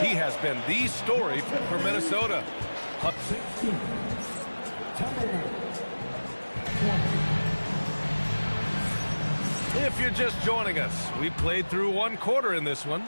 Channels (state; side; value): inverted; both; correlation -1.00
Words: He has been the story for Minnesota. If you're just joining us, we played through 1 quarter in this one.